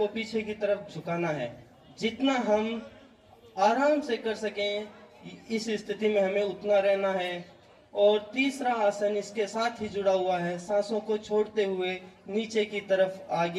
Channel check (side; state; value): both; identical; correlation 1.00